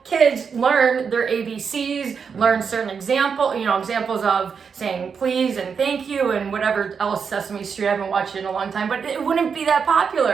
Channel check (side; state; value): left; quieter; 6.2 dB